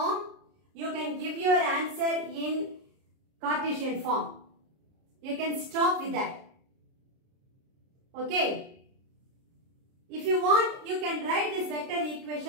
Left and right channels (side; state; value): left; late; 30 ms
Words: you can give your answer in Cartesian form. You can stop with that. Okay. If you want, you can write this vector